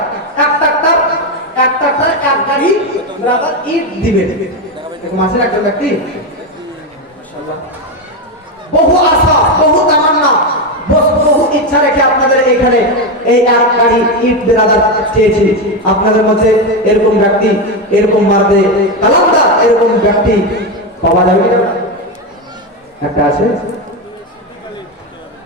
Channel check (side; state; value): both; normal; correlation 0.11